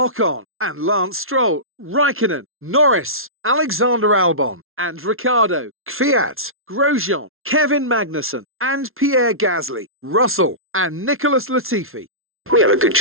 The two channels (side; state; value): left; late; 0.61 ms